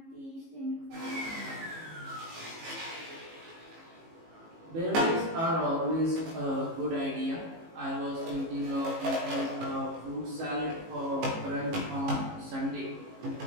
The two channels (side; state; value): left; late; 18 ms